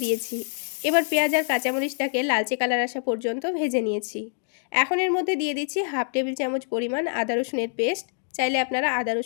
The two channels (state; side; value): silent; right; digital silence